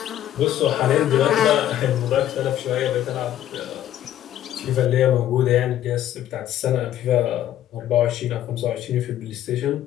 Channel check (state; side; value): quieter; right; 12.0 dB